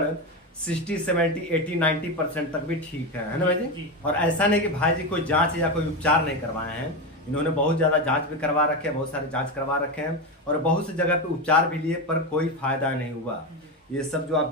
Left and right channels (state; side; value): normal; both; correlation 0.15